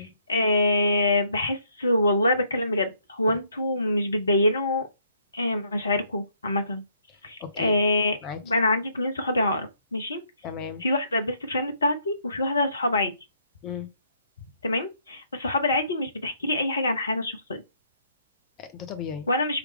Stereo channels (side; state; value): both; inverted; correlation -0.70